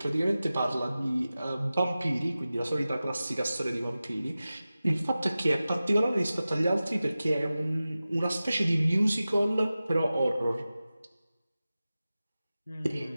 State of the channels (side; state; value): both; inverted; correlation -0.95